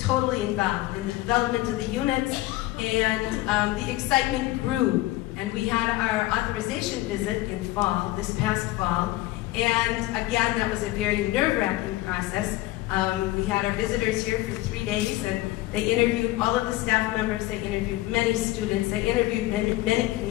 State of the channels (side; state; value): right; quieter; 17.9 dB